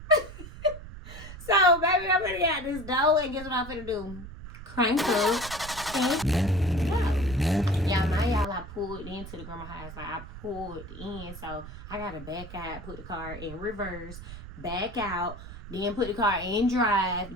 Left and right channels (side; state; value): right; noise; rumble, 13 dB below the sound